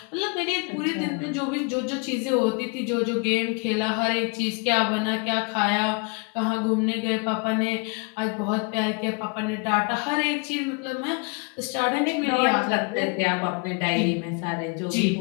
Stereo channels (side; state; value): right; quieter; 32.4 dB